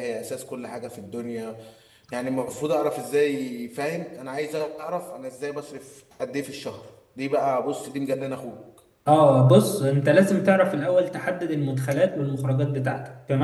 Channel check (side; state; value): both; identical; correlation 1.00